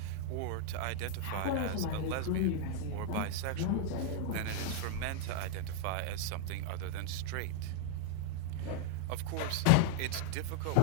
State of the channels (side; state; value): both; different; correlation 0.00